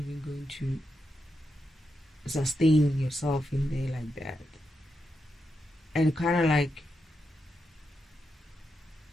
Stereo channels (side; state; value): both; normal; correlation 0.85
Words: going to sustain yourself in there like that. And kind of like,